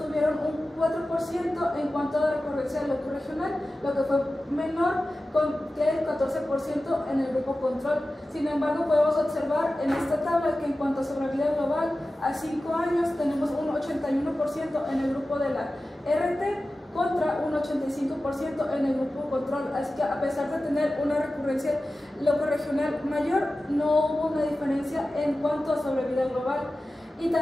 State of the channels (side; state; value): both; normal; correlation 0.95